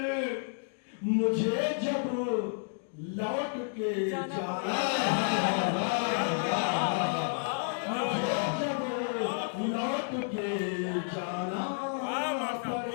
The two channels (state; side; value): silent; right; digital silence